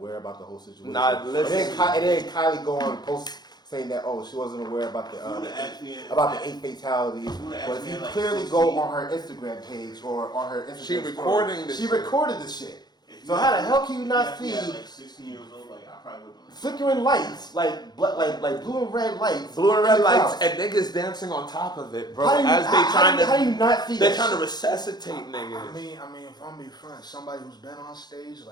about the whole situation. Nah, listen. And then Kylie go on and post saying that she wasn't aware about the 8 fatalities. But if you clearly go on her Instagram page or on her Instagram she recorded the shit. So how the hell can you not see? Like 16 years old, like I probably would. Flickering lights, like blue and red lights. Blue and red lights and niggas dancing on top of it, bro. How do you not see They're trying to resuscitate niggas. I mean, if I'm being frank, somebody who's been on stage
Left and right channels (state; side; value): late; right; 0.20 ms